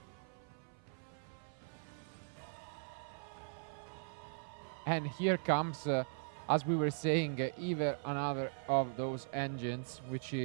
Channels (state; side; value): silent; left; 51 dB below the other